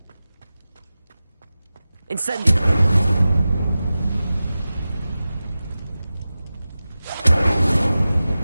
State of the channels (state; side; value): inverted; both; correlation -0.95